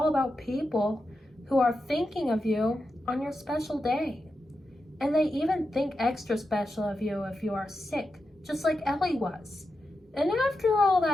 about people who are thinking of you on your special day. And they even think extra special of you if you are sick, just like Ellie was. And after all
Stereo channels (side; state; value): both; normal; correlation 0.89